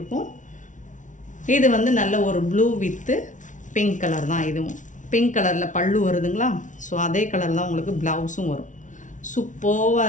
இது வந்து நல்ல ஒரு ப்ளூ வித்து பிங்க் கலர் தான். இதுவும் பிங்க் கலரில் பல்லு வருதுங்களா. ஸோ அதே கலர் தான் உங்களுக்கு ப்ளவுஸும் வரும். சூப்பராக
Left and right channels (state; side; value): late; right; 0.37 ms